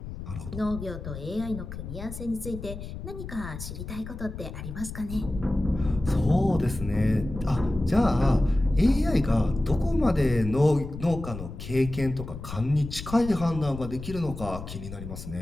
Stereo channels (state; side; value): noise; left; rumble, 10 dB below the sound